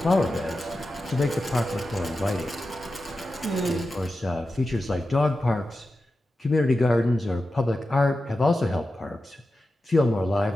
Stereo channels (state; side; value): normal; both; correlation 0.92